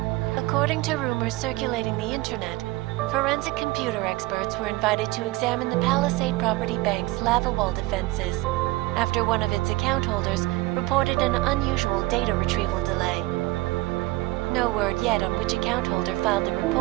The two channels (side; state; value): left; quieter; 20.1 dB